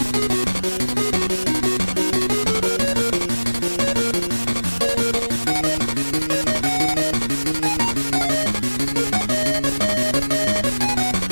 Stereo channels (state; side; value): inverted; both; correlation -1.00